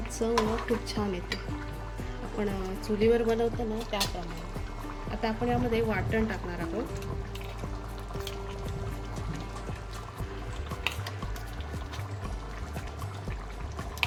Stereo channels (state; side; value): identical; both; correlation 1.00